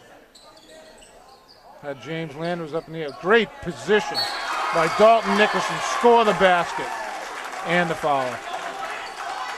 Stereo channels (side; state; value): both; identical; correlation 1.00